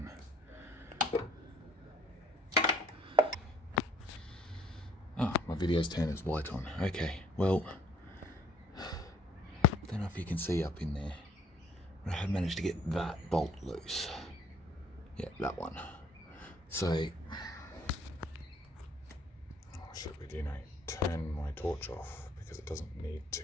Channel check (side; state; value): both; normal; correlation 0.61